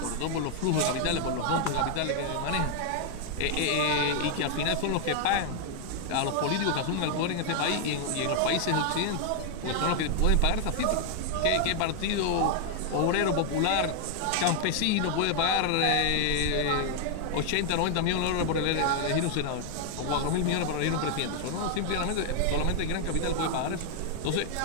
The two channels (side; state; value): both; different; correlation 0.00